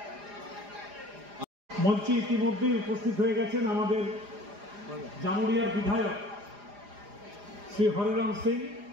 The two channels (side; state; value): left; late; 4.9 ms